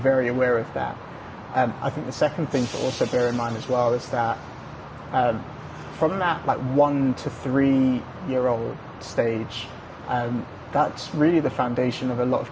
aware of that. I think the second thing to also bear in mind as well is that from that like 1 to 3-year-old stage, that's really the foundation of a lot of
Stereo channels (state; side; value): identical; both; correlation 1.00